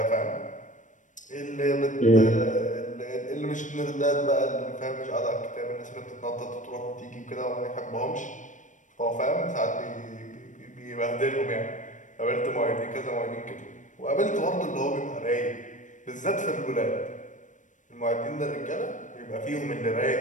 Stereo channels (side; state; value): right; late; 0.37 ms